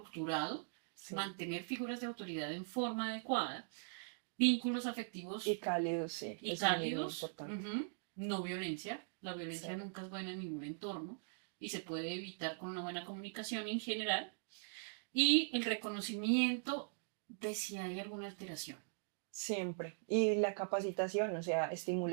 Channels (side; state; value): left; silent; digital silence